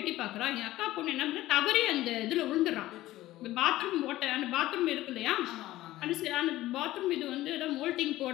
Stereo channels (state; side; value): quieter; right; 16.0 dB